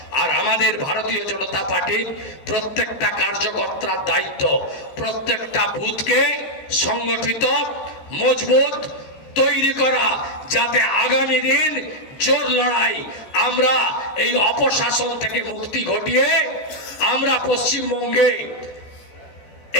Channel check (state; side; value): late; right; 14 ms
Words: আর আমাদের ভারতীয় জনতা পার্টির প্রত্যেকটা কার্যকর্তার দায়িত্ব প্রত্যেকটা বুথকে সংগঠিত, মজবুত তৈরি করা, যাতে আগামী দিন জোর লড়াই আমরা এই অপশাসন থেকে মুক্তি ঘটিয়ে আমরা পশ্চিমবঙ্গে